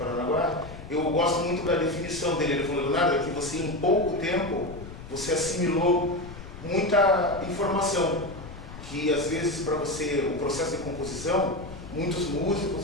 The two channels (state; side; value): noise; left; rumble, 13 dB below the sound